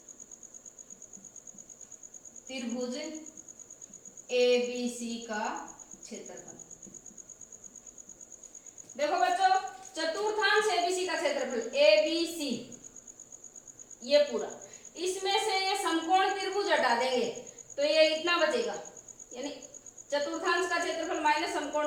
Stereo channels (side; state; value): both; identical; correlation 1.00